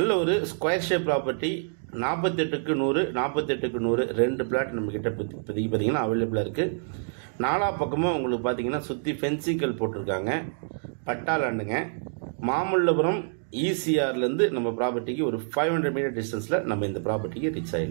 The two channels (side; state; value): left; silent; digital silence